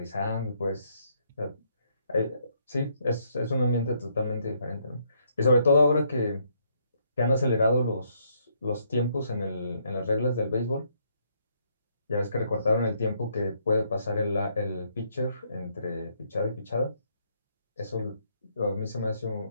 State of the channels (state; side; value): inverted; both; correlation -0.72